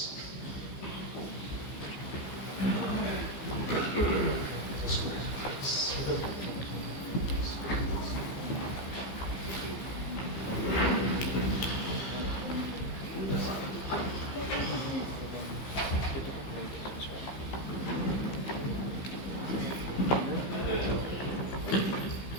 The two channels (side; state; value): right; late; 15 ms